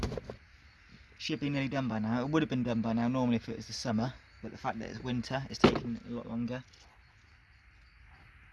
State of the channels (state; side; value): identical; both; correlation 1.00